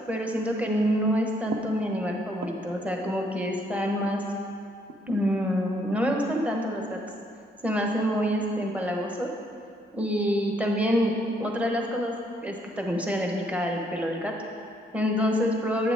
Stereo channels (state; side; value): normal; both; correlation 0.70